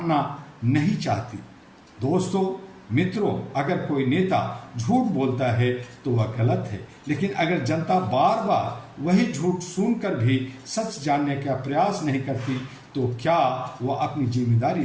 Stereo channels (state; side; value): identical; both; correlation 1.00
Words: नहीं चाहती। दोस्तों, मित्रों, अगर कोई नेता झूठ बोलता है तो वह गलत है, लेकिन अगर जनता बार बार वही झूठ सुनकर भी सच जानने का प्रयास नहीं करती तो क्या वह अपनी जिम्मेदारी